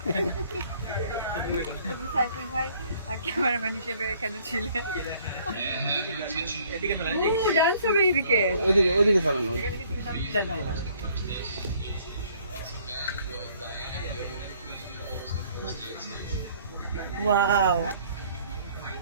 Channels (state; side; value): inverted; both; correlation -0.60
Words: সাইফুল ভাই ক্যামেরাম্যান হিসেবে এখানে ছিলেন। ডান্স হবে এদিকে, ওইদিকে চালানো। ওয়াও,